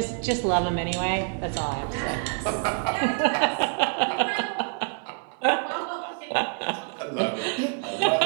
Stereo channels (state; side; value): quieter; left; 39.3 dB